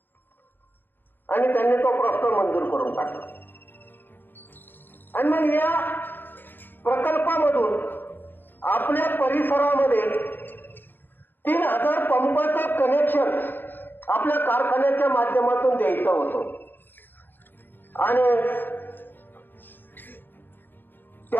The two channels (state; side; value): late; right; 0.094 ms